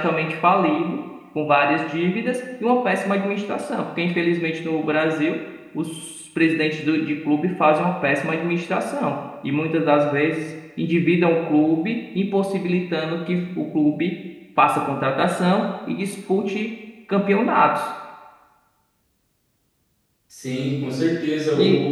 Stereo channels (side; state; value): both; identical; correlation 1.00